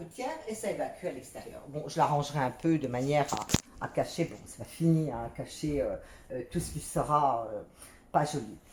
et ça évacue à l'extérieur. Bon, je l'arrangerai un peu de manière à cacher, bon, c'est pas fini, hein, à cacher tout ce qui sera pas joli.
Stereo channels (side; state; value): both; identical; correlation 1.00